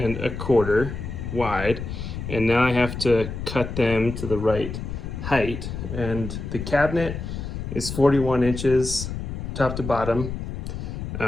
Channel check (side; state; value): left; noise; rumble, 6 dB below the sound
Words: wide, and now I have to cut them to the right height, and the cabinet is 41 inches top to bottom,